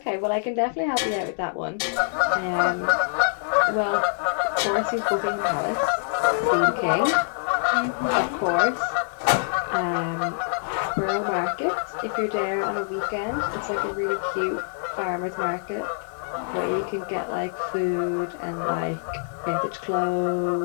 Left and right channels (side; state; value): right; silent; digital silence